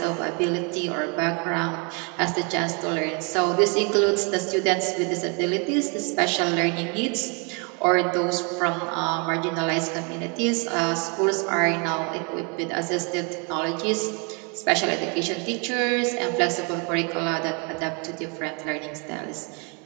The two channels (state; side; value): quieter; left; 34.3 dB